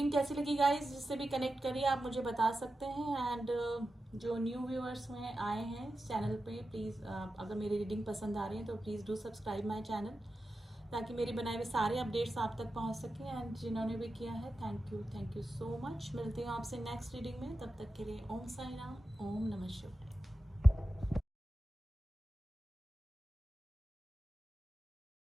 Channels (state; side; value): normal; both; correlation 0.92